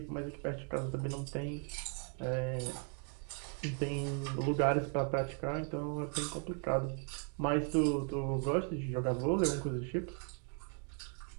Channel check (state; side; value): quieter; left; 39.9 dB